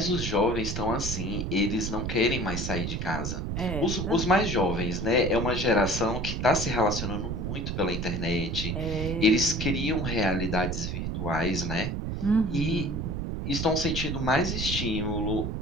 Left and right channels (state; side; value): noise; right; rumble, 3 dB below the sound